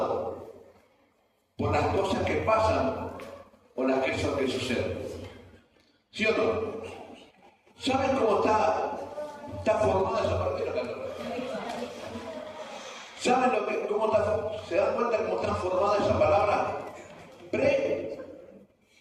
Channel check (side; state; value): both; identical; correlation 1.00